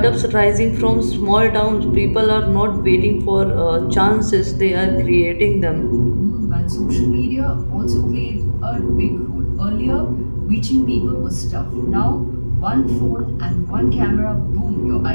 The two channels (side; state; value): both; inverted; correlation -1.00